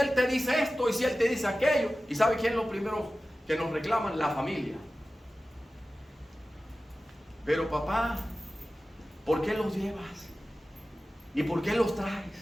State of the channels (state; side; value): normal; both; correlation 0.95